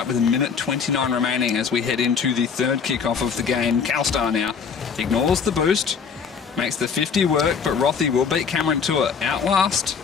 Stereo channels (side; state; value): right; quieter; 6.2 dB